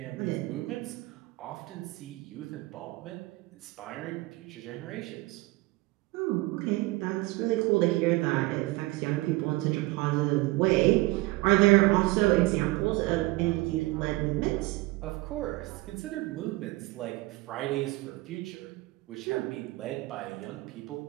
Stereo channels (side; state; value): left; quieter; 21.1 dB